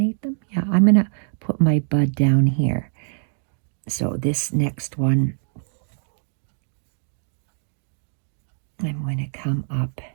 them? Yeah, I'm going to put my bud down here. So this next one, I'm going to come up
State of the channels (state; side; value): silent; left; digital silence